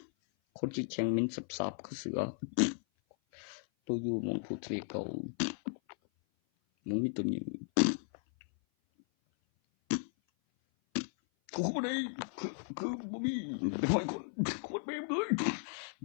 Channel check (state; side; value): silent; right; 54 dB below the other